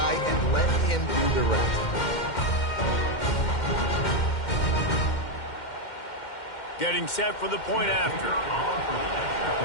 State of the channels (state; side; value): late; right; 2.1 ms